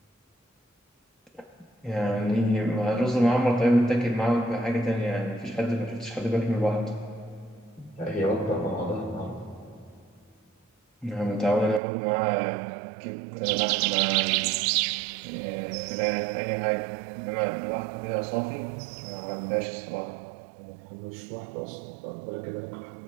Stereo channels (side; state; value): left; drops out; at 11.8 s